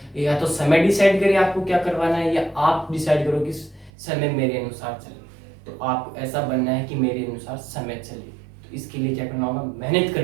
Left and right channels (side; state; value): left; drops out; at 3.9 s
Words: या तो समय डिसाइड करे आपको क्या करवाना है, या आप डिसाइड करो कि समय मेरे अनुसार चले। तो आपको ऐसा बनना है कि मेरे अनुसार समय चले। तो इसके लिए क्या करना होगा? मेहनत